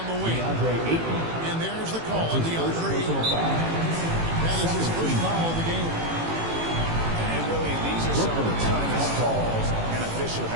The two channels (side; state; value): left; late; 18 ms